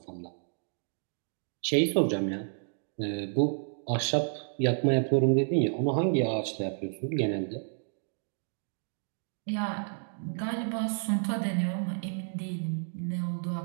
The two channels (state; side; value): silent; left; 57 dB below the other